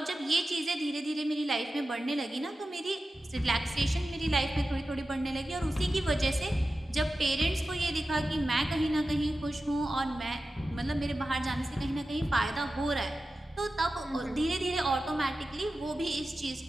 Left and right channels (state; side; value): normal; both; correlation 0.93